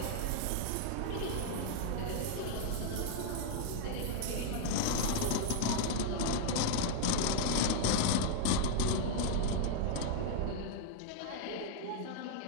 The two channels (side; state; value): both; different; correlation 0.00